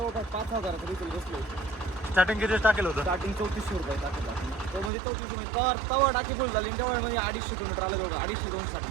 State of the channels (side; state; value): left; drops out; at 4.9 s